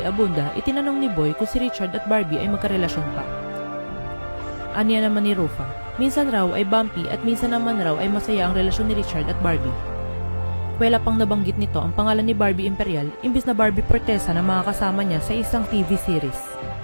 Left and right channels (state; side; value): inverted; both; correlation -1.00